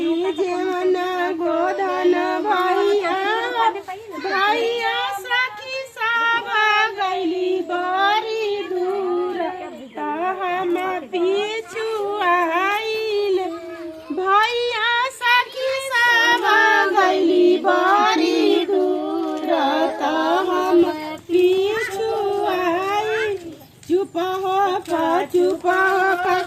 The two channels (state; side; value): identical; both; correlation 1.00